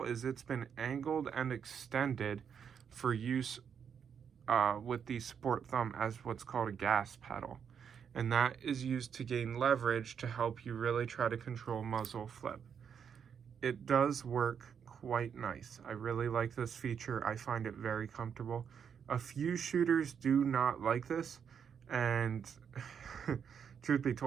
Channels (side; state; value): left; quieter; 7.4 dB